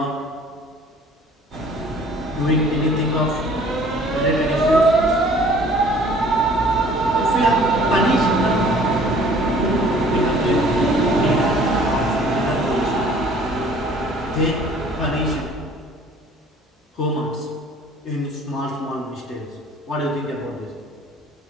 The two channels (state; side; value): normal; both; correlation 0.53